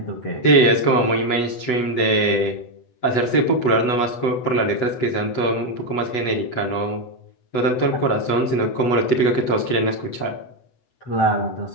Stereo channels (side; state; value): right; late; 8.0 ms